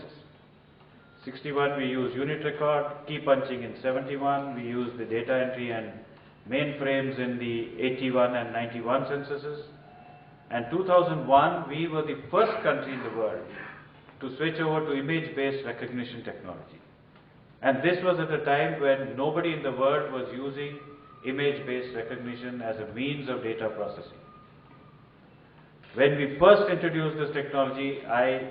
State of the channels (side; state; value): both; identical; correlation 1.00